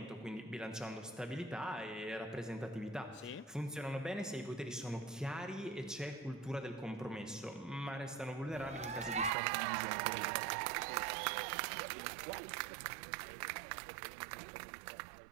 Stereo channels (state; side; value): drops out; left; at 9.3 s